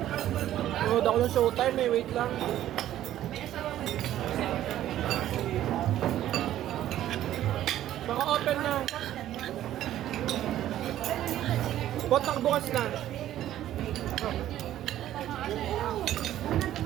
Nood ako ng showtime eh, wait lang. Baka open na. Botak bukas na.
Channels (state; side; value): quieter; left; 12.6 dB